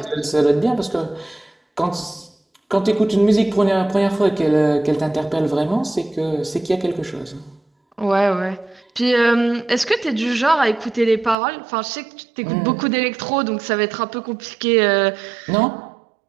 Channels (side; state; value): left; drops out; at 11.4 s